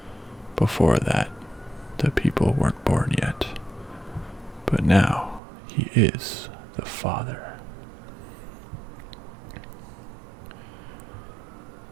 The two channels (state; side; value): drops out; left; at 5.4 s